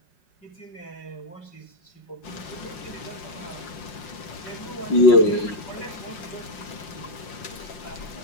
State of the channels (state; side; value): late; right; 5.7 ms